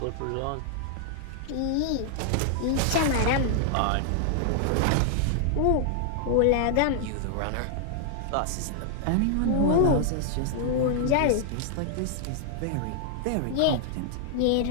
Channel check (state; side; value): different; both; correlation 0.00